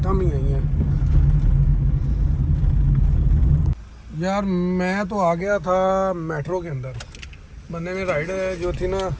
ही आई हैं यार। मैं तो आ गया था मेट्रो के अंदर, बंदे ने राइड जो थी ना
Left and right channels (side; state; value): both; identical; correlation 1.00